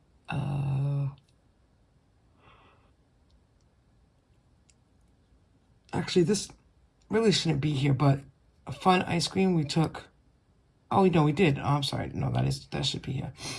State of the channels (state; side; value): identical; both; correlation 1.00